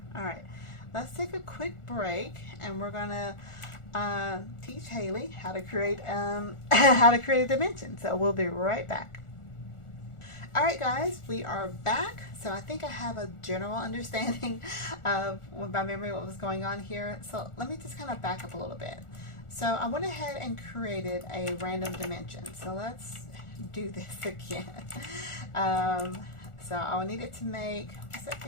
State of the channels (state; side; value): late; right; 1.4 ms